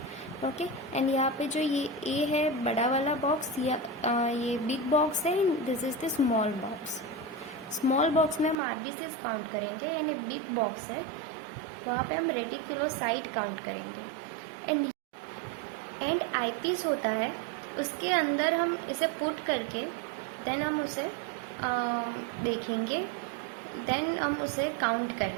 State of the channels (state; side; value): drops out; left; at 8.6 s